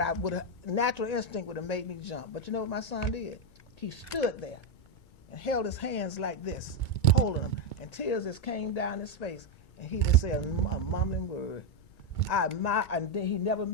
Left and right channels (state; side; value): late; right; 2.2 ms